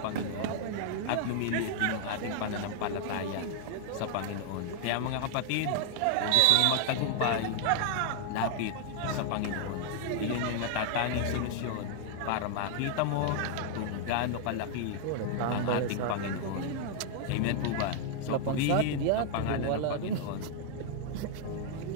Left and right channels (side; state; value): both; different; correlation 0.00